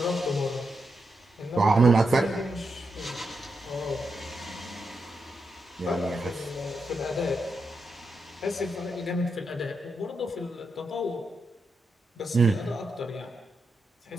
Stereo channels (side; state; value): both; normal; correlation 0.85